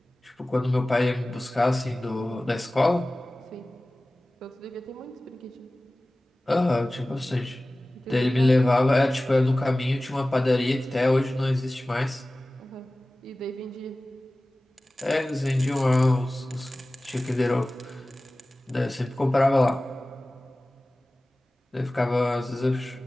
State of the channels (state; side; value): normal; both; correlation 0.97